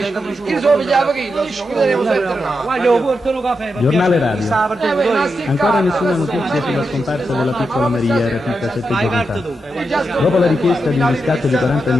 Io sono pigliato che non ci chiuderemo sempre. Guarda, portano caffè. Giornale radio. Ancora nessuna notizia sulla scomparsa della piccola Maria, rapita 7 giorni fa. Dopo la richiesta di un riscatto di 40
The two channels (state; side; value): normal; both; correlation 0.86